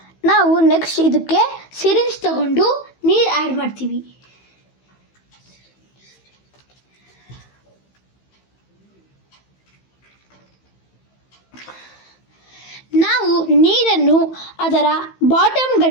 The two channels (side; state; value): right; late; 15 ms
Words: ನಾವು ನೆಕ್ಸ್ಟ್ ಇದಕ್ಕೆ ಸಿರಿಂಜ್ ತಗೊಂಡು ನೀರು ಆ್ಯಡ್ ಮಾಡ್ತೀವಿ. ನಾವು ನೀರನ್ನು ಅದರ ಬಾಟಮ್